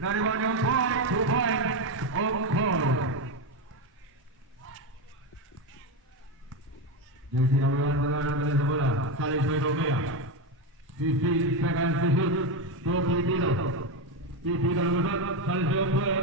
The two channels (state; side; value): normal; both; correlation 0.12